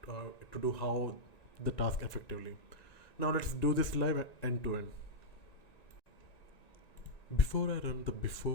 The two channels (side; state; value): right; late; 1.9 ms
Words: to do how the task effectively. Now let's do this live end to end. Before I run the